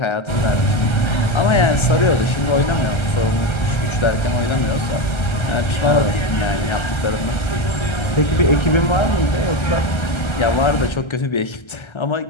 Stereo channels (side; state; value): right; late; 1.3 ms